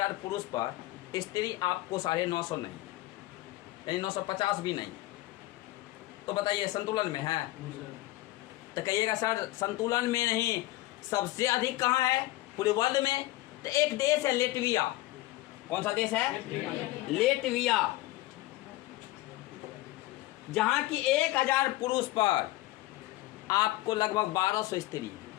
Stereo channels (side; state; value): right; quieter; 17.7 dB